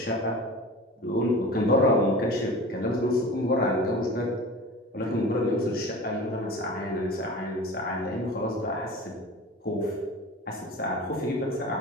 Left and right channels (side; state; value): both; normal; correlation 0.36